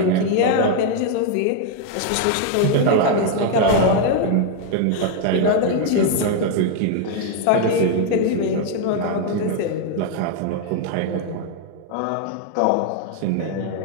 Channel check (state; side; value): different; both; correlation 0.00